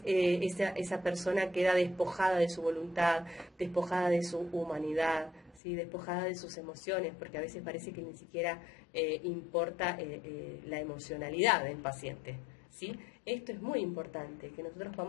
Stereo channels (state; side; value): drops out; right; at 5.6 s